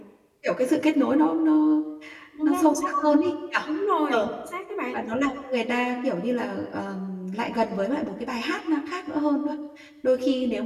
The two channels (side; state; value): both; identical; correlation 1.00